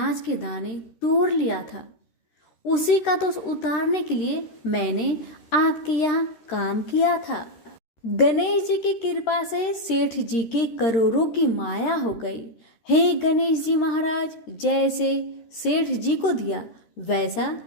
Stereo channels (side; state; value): right; late; 13 ms